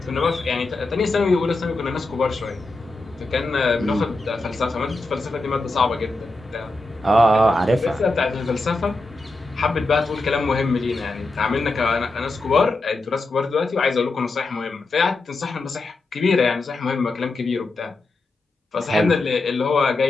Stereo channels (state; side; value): quieter; right; 3.0 dB